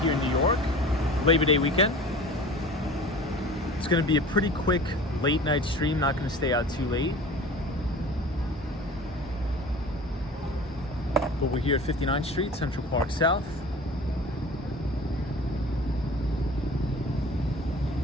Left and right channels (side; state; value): both; normal; correlation 0.41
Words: in New York, Labor Day weekend. It's going to be a pretty quick late night stream, not going to stay out too late. But we're here at 59th Street, Central Park South.